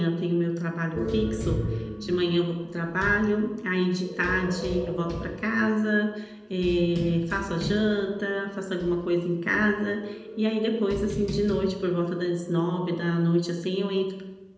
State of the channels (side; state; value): both; identical; correlation 1.00